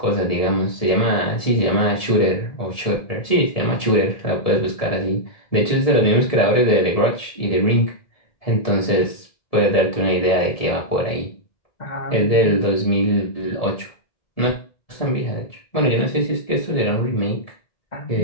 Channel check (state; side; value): late; right; 1.7 ms